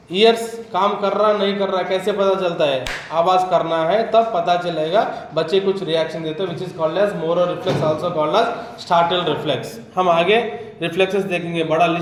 ईयर्स काम कर रहा नहीं कर रहा कैसे पता चलता है? आवाज करना है तब पता चलेगा, बच्चे कुछ रिएक्शन देते हैं, which is called as Moro reflex also called as startle reflex. हम आगे रिफ्लेक्सेस देखेंगे, बड़ा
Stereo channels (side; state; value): both; identical; correlation 1.00